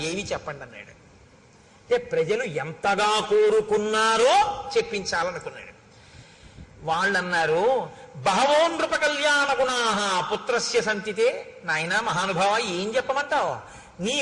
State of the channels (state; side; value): identical; both; correlation 1.00